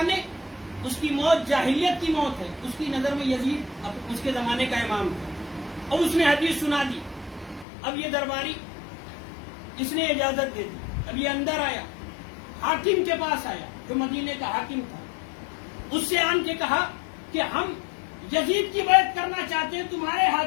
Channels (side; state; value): right; drops out; at 7.7 s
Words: اس کی موت جاہلیت کی موت ہے. اس کی نظر میں یزید اس کے زمانے کا امام تھا اور اس نے حدیث سنا دی. اب یہ درباری اس نے اجازت دے دی. اب یہ اندر آیا، حاکم کے پاس آیا جو مدینے کا حاکم تھا. اس سے آن کے کہا کہ ہم یزید کی بیعت کرنا چاہتے ہیں تمہارے